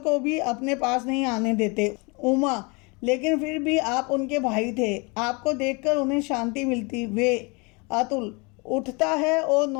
भी अपने पास नहीं आने देते। उमा, लेकिन फिर भी आप उनके भाई थे, आपको देखकर उन्हें शांति मिलती। वे। अतुल उठता है और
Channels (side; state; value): right; quieter; 29.3 dB